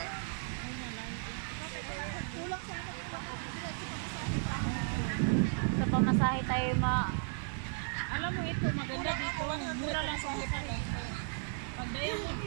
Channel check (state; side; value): silent; left; 54 dB below the other